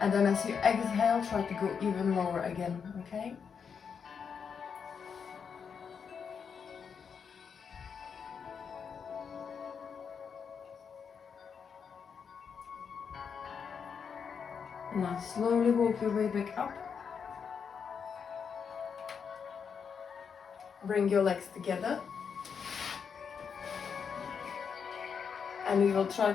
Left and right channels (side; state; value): right; quieter; 6.5 dB